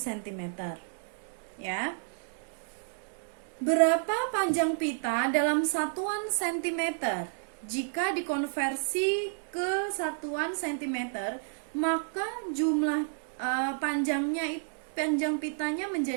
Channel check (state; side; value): silent; left; digital silence